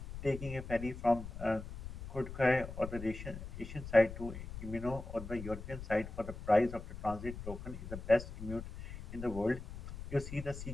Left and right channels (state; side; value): noise; left; rumble, 10 dB below the sound